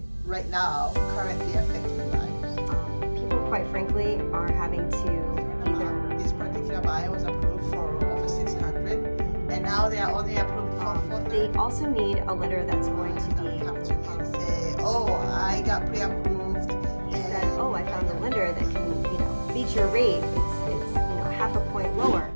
right now currently affecting buyers? People, quite frankly, are having to either This particular buyer was approved for over 600, and now they are only approved for 430. they also need a lender that's going to be Come to me and say, "Oh, I got pre-approved." he said, oh, I found a lender that can, beat your rate. It's half a point lower.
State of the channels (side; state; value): both; inverted; correlation -1.00